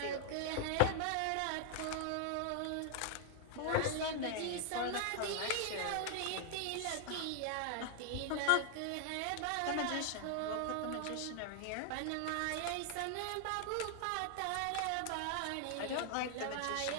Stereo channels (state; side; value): different; both; correlation 0.00